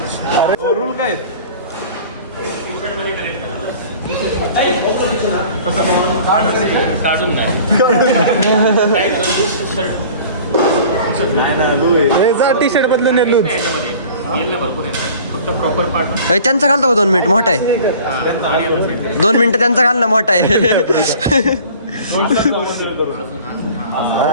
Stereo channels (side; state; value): both; inverted; correlation -0.46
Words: रूल काय टी शर्ट बदलून लूज त्यांचा घालतो 2 मिनिट मोठा आहे. 2 मिनिटं त्यांचा घाल ना मोठा आहे.